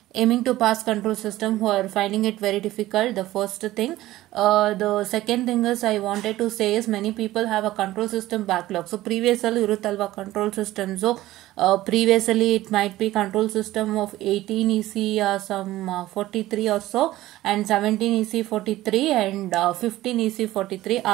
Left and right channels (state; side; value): quieter; left; 16.0 dB